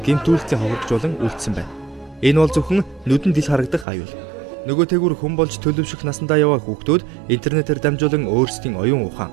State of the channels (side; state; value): left; drops out; at 3.9 s